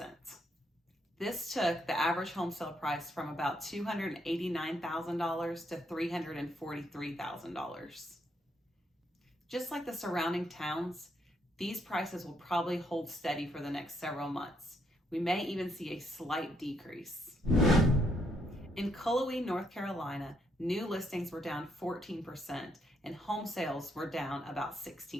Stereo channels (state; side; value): normal; both; correlation 0.74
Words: This took the average home sale price from about $289,000 to $343,000. Just like the surrounding towns, these prices will probably hold steady for the next several months. We may even see a slight decrease. In Cullowhee, North Carolina, new listings were down 14% and home sales were down about